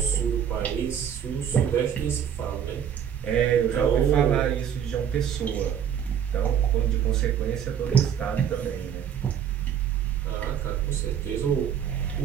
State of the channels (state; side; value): quieter; left; 8.7 dB